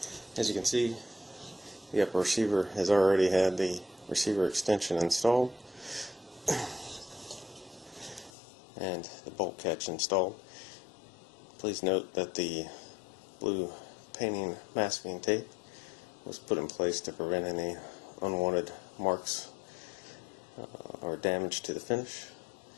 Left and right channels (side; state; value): right; drops out; at 8.3 s